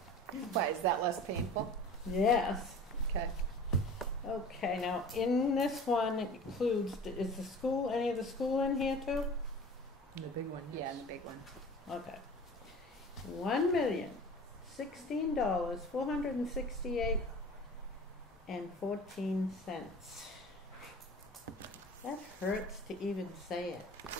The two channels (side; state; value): both; normal; correlation 0.41